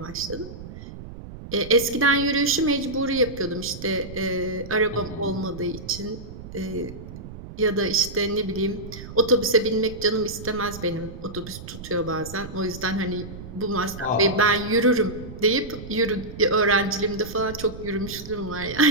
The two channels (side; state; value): right; noise; rumble, 13 dB below the sound